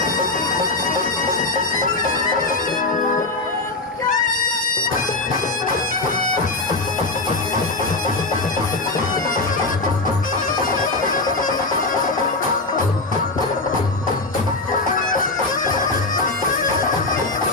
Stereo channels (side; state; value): right; quieter; 3.2 dB